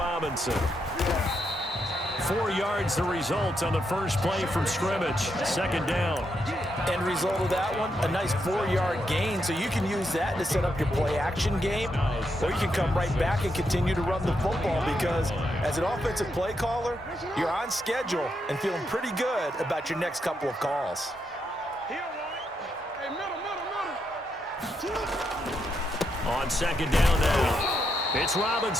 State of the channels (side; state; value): both; normal; correlation 0.81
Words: 4 yards the result on the first play from scrimmage. Second down. End result of that one, a nice 4-yard gain. So you can use that to set up your play-action game, or you can come right back and continue to run the football because as an offensive play caller, you're on schedule and feeling pretty good about your next couple of calls. On second down now. It's